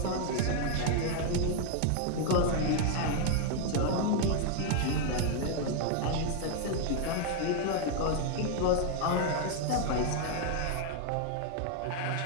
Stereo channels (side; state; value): both; different; correlation 0.00